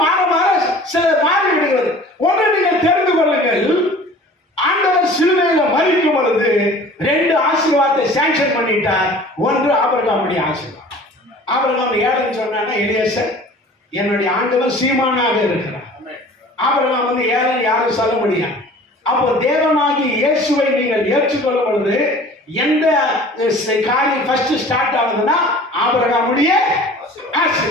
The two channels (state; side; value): normal; both; correlation 0.45